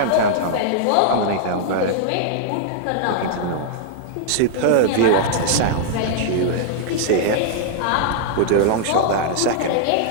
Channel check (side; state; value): both; different; correlation -0.01